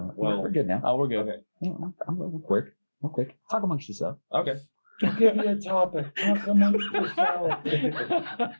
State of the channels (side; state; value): both; inverted; correlation -1.00